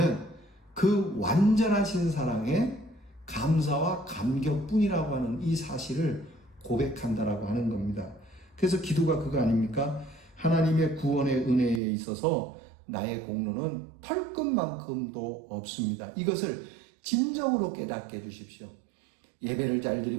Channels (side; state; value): left; drops out; at 11.8 s